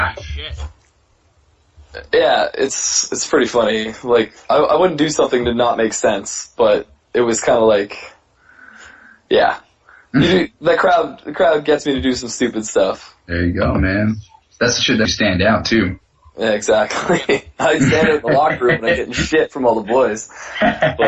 Shit. Yeah, it's pretty funny. Like, I wouldn't do something to not make sense, but it was kind of like, yeah. The crowd gets me to do some stupid stuff. There you go, man. That's the shit that stand out, too. Yeah, exactly. I stand in the locker room and I'm getting shit from all the boys.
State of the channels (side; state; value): both; identical; correlation 1.00